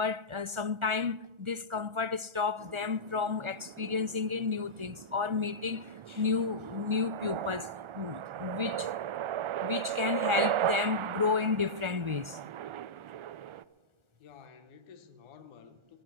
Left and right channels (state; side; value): late; left; 1.4 ms